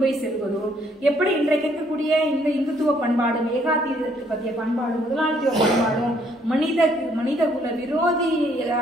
போய் செல்வதோ, எப்படி இன்றைக்கு இருக்கக்கூடிய இந்த இந்துத்துவ பண்பாடு, ஏகாதிபத்திய பற்றிய பண்பாடு, முதலாளித்துவ பண்பாடும் மனித குல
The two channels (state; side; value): normal; both; correlation 0.66